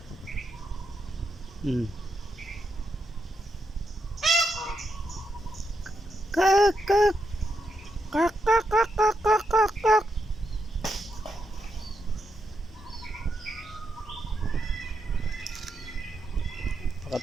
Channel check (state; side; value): normal; both; correlation 0.82